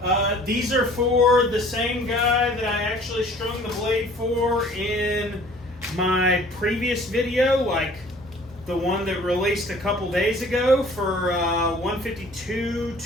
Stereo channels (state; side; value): normal; both; correlation 0.52